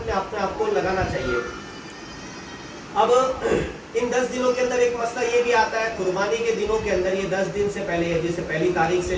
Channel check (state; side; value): identical; both; correlation 1.00